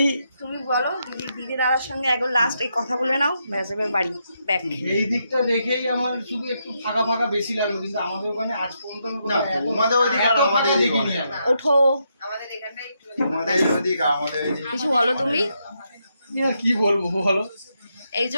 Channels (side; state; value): both; inverted; correlation -0.81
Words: তুমি বলো দিদি দাদার সঙ্গে একবার লাস্ট এই কথা বলে নাও ব্যাস এবার বাড়ি ব্যাক। এই দিকটা দেখেই আমার শুধু একটু ফাঁকা ফাঁকা বেশি লাগলো, কিন্তু আমাদের ওখানে আজ পর্যন্ত তোমাদের ওইদিকে আর আমাদের দেখিনি। ওঠো আমাদের এখানটাই একটু তোমাদের ওইদিকে আমাদের কিছু বলো তুমি। কি বলবো বলো, এই যে